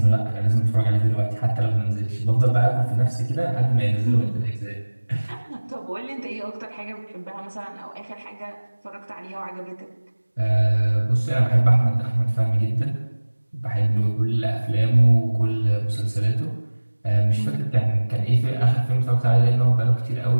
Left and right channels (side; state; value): both; inverted; correlation -1.00